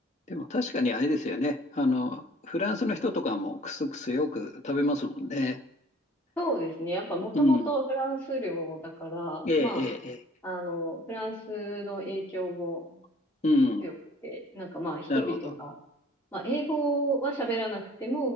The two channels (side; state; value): both; normal; correlation 0.54